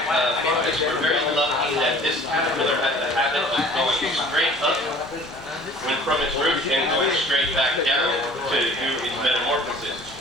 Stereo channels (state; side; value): normal; both; correlation 0.48